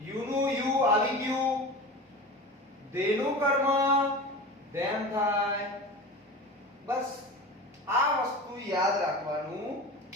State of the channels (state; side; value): normal; both; correlation 0.32